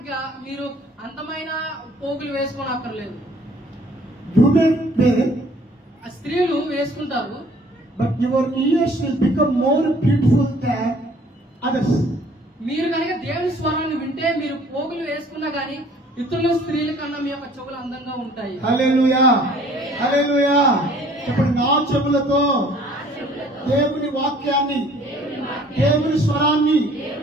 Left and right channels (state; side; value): normal; both; correlation 0.55